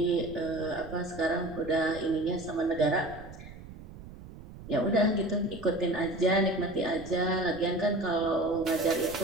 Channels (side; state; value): right; noise; rumble, 16 dB below the sound